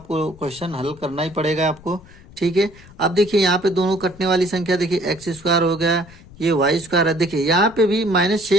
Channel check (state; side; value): noise; left; rumble, 22 dB below the sound